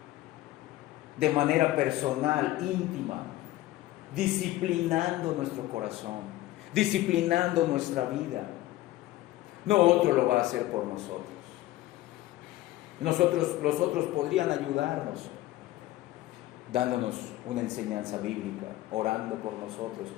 de manera personal, íntima, disciplinando nuestro corazón, disciplinando nuestra vida. No otro lo va a hacer por nosotros. Los otros podrían ayudarnos, dándonos una enseñanza bíblica, orando por nosotros,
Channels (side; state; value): right; quieter; 16.1 dB